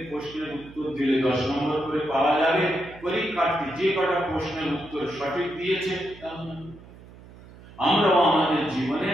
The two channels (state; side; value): noise; right; hum, 20 dB below the sound